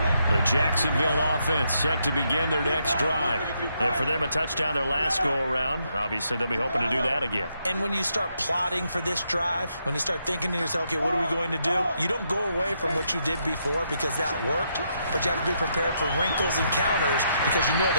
The Jacksonville offense set to begin their next drive. And for them, a touchdown their last go-around. Obviously, they'll be hoping to do that again. And when you start plotting for this drive, when you start thinking to yourself, okay, what are we going to do? You don't go away from what you did before because that worked, but you have to be prepared for wrinkles and counters because you know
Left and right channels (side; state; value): both; inverted; correlation -0.78